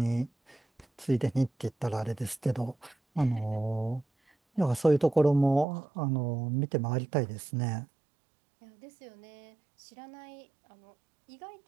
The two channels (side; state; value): left; drops out; at 5.7 s